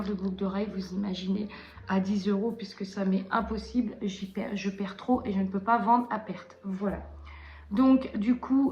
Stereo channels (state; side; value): identical; both; correlation 1.00